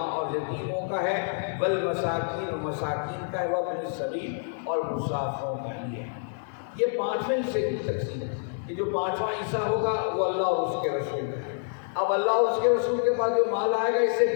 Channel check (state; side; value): silent; right; digital silence